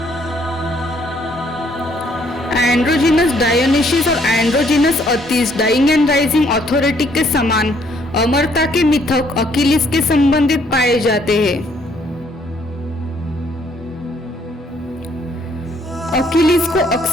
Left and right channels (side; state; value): both; normal; correlation 0.66